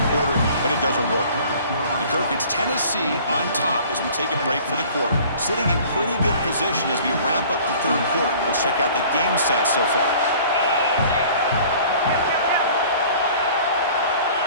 quarter, but it doesn't work. And Kirk, it's Tennessee on top as we take a break for the quarter. Sitting in pretty good position as we wrap up the 3rd quarter. Let's check out the game stats so far.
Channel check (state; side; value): inverted; both; correlation -0.49